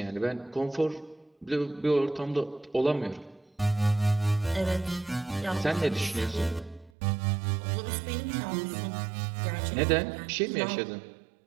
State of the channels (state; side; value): drops out; left; at 6.9 s